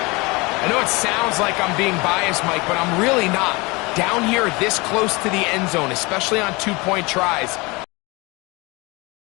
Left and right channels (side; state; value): right; quieter; 25.2 dB